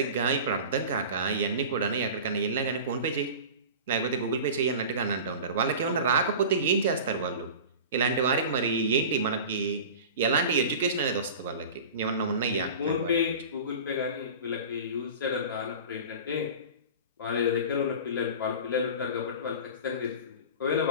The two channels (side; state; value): both; inverted; correlation -0.35